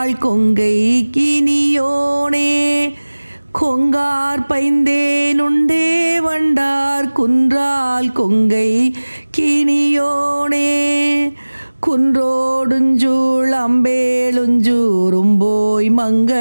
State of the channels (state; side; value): inverted; both; correlation -1.00